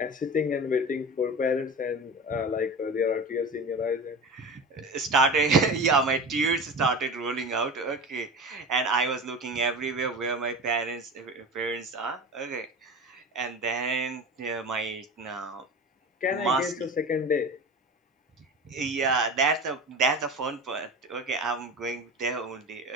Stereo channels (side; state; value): both; normal; correlation 0.31